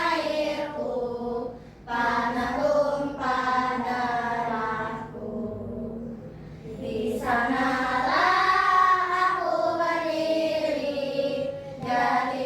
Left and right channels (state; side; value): identical; both; correlation 1.00